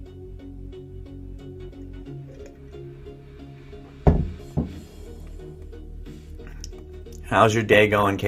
How's your day going,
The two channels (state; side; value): identical; both; correlation 1.00